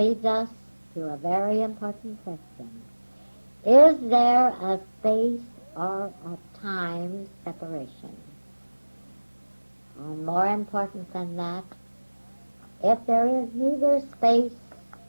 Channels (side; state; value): both; inverted; correlation -1.00